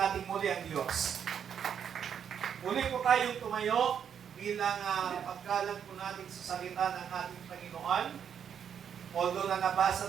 muli ang Diyos. Muli po tayong tumayo bilang pagkalang po natin sa salita ng ating Panginoon. Although na nabasa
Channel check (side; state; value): left; quieter; 8.1 dB